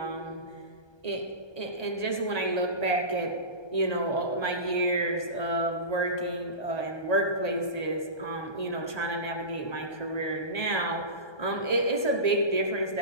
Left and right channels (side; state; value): right; late; 1.2 ms